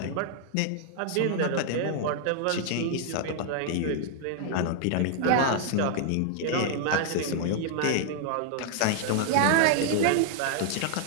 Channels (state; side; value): different; both; correlation 0.00